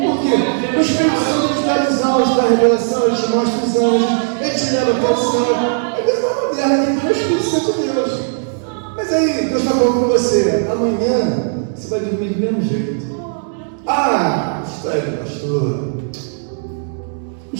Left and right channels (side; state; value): left; silent; digital silence